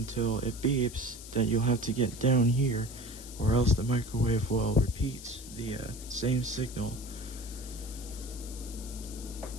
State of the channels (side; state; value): left; noise; hiss, 14 dB below the sound